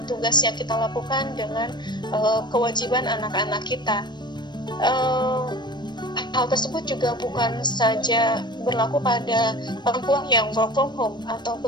tugas yang kita lakukan dengan kewajiban anak-anak kita. Hal tersebut juga bukan saja berlaku pada perempuan yang work from home atau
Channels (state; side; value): late; right; 0.22 ms